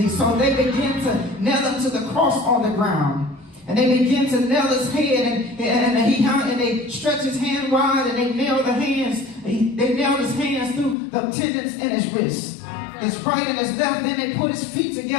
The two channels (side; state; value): right; drops out; at 11.0 s